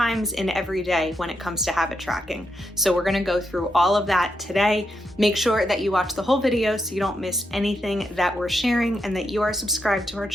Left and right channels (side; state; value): both; normal; correlation 0.83